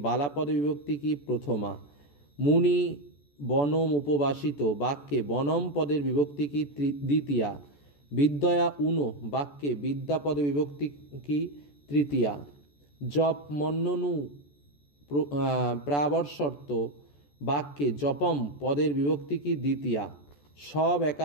বালাপদে বিভক্তি কি? প্রথমা। মুনি বনম উপবাসিত বাক্যে বনম পদের বিভক্তি কি? দ্বিতীয়া। বিদ্যয়া উনো বাক্যে বিদ্যাপদে বিভক্তি কি? তৃতীয়া। জপ মন্ননু প্রাবর্ষর্ত বাক্যে জপম পদের বিভক্তি কি? দ্বিতীয়া।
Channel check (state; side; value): late; right; 14 ms